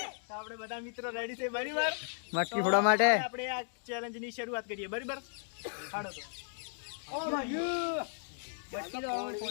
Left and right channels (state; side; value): silent; right; digital silence